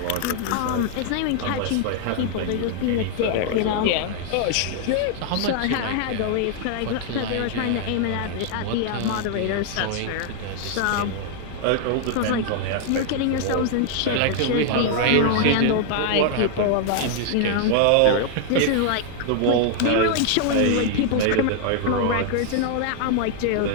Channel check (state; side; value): different; both; correlation 0.00